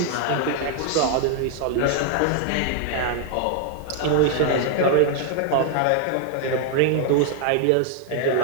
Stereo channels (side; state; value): both; different; correlation 0.00